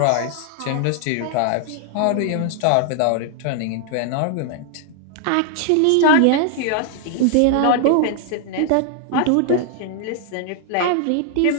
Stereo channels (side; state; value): both; different; correlation 0.00